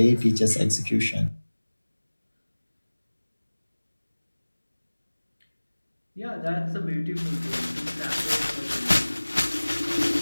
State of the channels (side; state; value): both; inverted; correlation -1.00